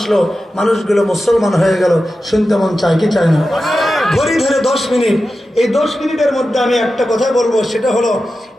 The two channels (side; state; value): both; normal; correlation 0.92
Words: মানুষগুলো মুসলমান হয়ে গেল, শুনতে মন চায় কি চায় না? ঘড়ি ধরে 10 মিনিট। এই 10 মিনিটের মধ্যে আমি একটা কথা বলবো, সেটা হলো